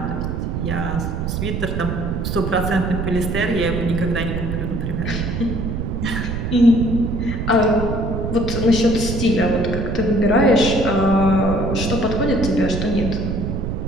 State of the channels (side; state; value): right; noise; rumble, 3 dB below the sound